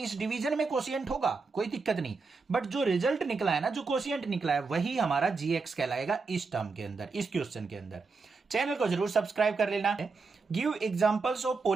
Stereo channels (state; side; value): quieter; left; 4.4 dB